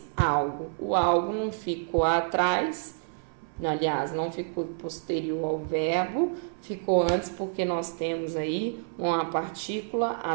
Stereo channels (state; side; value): silent; left; 57 dB below the other